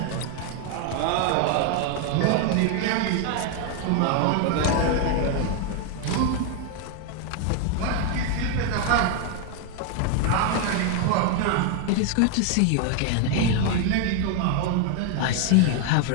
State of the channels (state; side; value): different; both; correlation 0.01